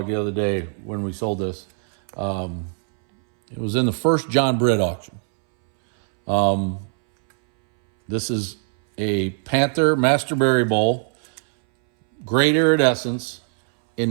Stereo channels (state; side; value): silent; left; 65 dB below the other